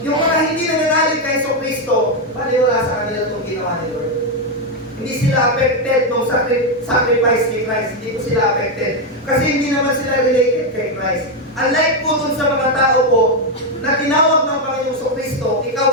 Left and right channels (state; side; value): normal; both; correlation 0.04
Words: mga hindi nananalig kay Jesu Kristo, wala sa kanila itong ginawa ni Lord. Hindi sila affected ng sacrifice ni Christ. Hindi po sila affected. Kasi hindi naman sila related kay Christ. Unlike po dun sa mga tao po, na tinawag ng Panginoong Kristo, ikaw